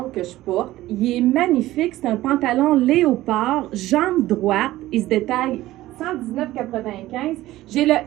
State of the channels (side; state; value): left; quieter; 16.0 dB